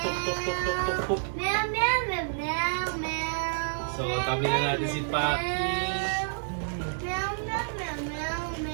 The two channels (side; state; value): left; silent; digital silence